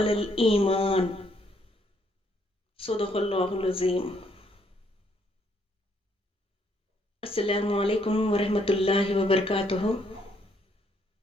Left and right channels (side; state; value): both; normal; correlation 0.70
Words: الإيمان صدق اللہ العظیم۔ السلام علیکم ورحمۃ اللہ وبرکاتہ۔